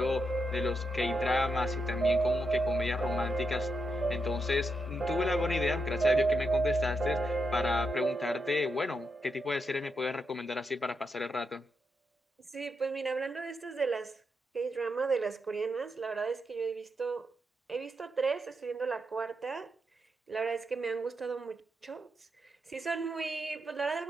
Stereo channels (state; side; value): normal; both; correlation 0.83